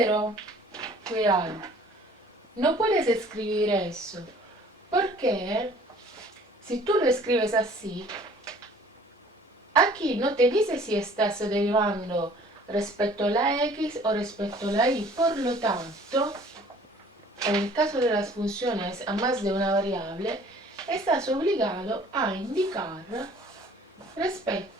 cuidado, no puedes escribir eso, porque si tú lo escribes así, aquí no te dice si estás derivando respecto a la x o respecto a la y. Por lo tanto, en el caso de las funciones a más de una variable, estás obligado a indicar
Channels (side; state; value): both; normal; correlation 0.52